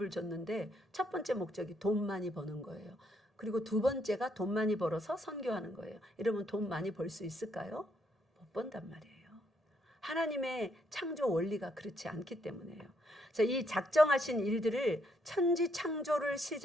줬는데, 첫 번째 목적이 돈 많이 버는 거예요. 그리고 두 번째가 돈 많이 벌어서 선교하는 거예요. 이러면 돈 많이 벌 수 있을까요? 못 번단 말이에요. 하나님의 창조 원리가 그렇지 않기 때문에요. 그래서 이 작정하신 일들을 천지 창조를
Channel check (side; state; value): both; normal; correlation 0.74